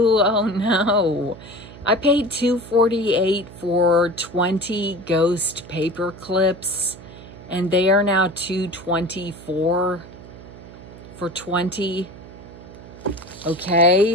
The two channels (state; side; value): noise; right; hum, 17 dB below the sound